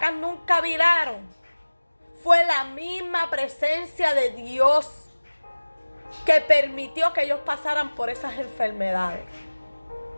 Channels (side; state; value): both; inverted; correlation -1.00